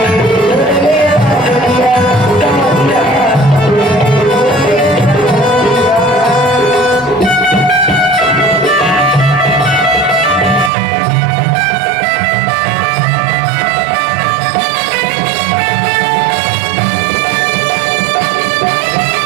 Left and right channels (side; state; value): left; drops out; at 10.7 s